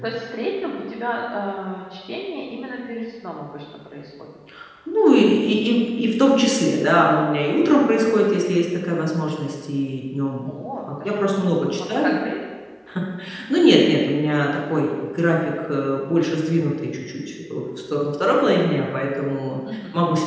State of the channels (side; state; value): both; identical; correlation 1.00